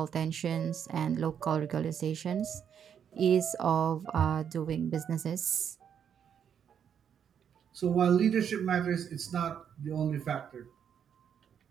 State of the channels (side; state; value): left; quieter; 8.2 dB